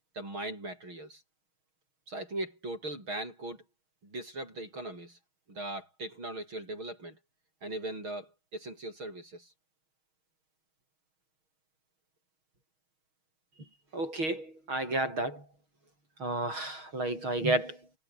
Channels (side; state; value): left; late; 6.3 ms